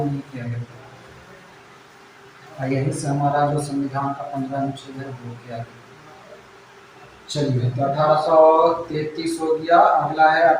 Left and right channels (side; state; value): both; identical; correlation 1.00